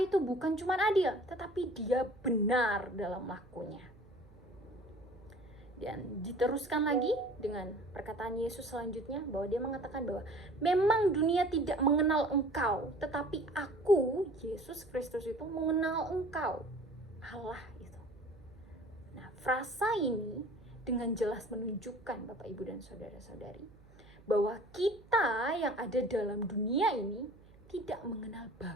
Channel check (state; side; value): noise; right; hum, 24 dB below the sound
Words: bukan cuma adil, tetapi dia benar dalam lakunya. Dan diteruskan lagi dengan perkataan Yesus selanjutnya, bahwa dia mengatakan bahwa memang dunia tidak mengenal engkau, tetapi aku, Yesus Kristus itu mengenal engkau, Allah itu. Nah, frasa ini dengan jelas menunjukkan Bapak, Ibu, dan saudara-saudari, bahwa kita yang ada dalam dunia ini tidak mengenal